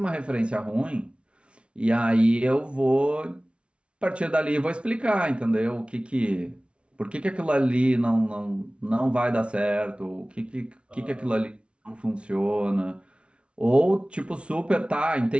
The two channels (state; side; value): late; left; 0.059 ms